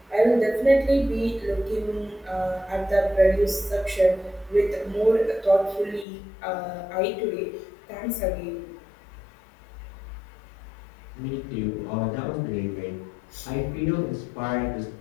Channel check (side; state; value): right; drops out; at 6.1 s